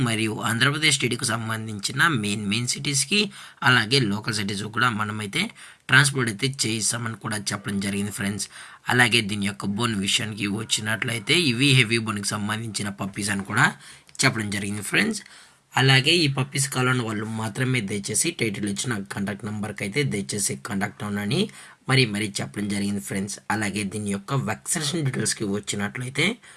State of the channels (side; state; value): both; identical; correlation 1.00